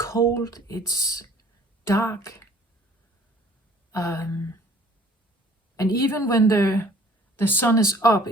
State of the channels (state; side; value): normal; both; correlation 0.54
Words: it's dark. And even when the sun is up,